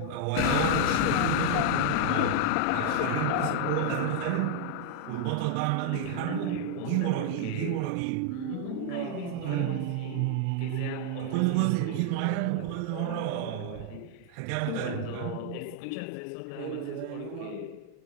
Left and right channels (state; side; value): different; both; correlation 0.00